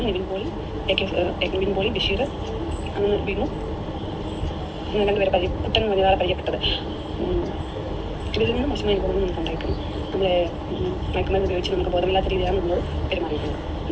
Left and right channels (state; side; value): identical; both; correlation 1.00